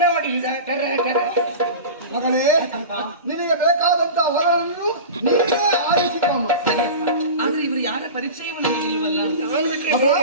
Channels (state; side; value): inverted; both; correlation -0.31